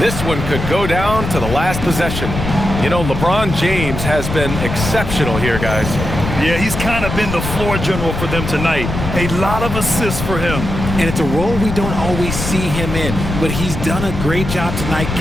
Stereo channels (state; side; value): noise; left; rumble, 5 dB below the sound